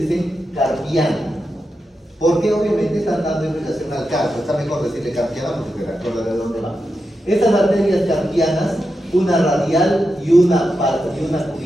carpiana, porque obviamente están dando indicación al carpo. Está mejor decirle carpiana porque se recuerda de dónde va. Estas arterias carpianas, una radial y una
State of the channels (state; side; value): normal; both; correlation 0.88